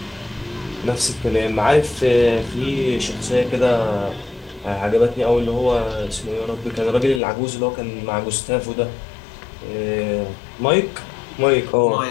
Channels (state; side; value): drops out; right; at 7.2 s